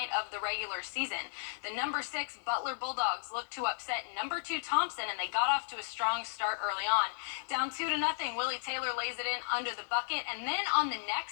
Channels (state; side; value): silent; right; digital silence